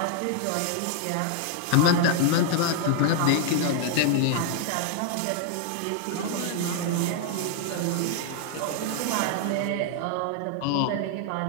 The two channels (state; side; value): different; both; correlation 0.00